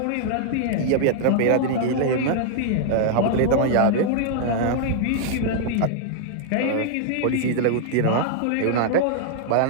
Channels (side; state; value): both; different; correlation -0.01